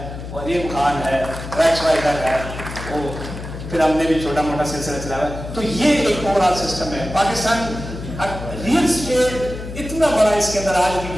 وہ عظیم خان ہے, ریکس وائزر ہے, وہ پھر ہم نے بھی چھوٹا موٹا سلسلہ چلایا ہے. تو یہ ایک اوور آل سسٹم ہے. پاکستان ریئل اسٹیٹ اتنا بڑا اس کے اندر آج بھی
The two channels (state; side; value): noise; left; hum, 10 dB below the sound